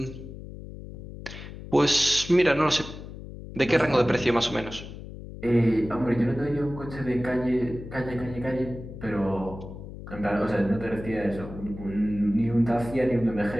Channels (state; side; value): noise; left; hum, 12 dB below the sound